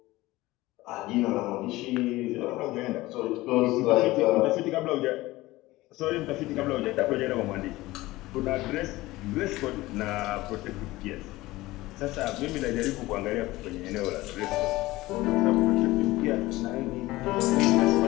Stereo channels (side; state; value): right; quieter; 18.7 dB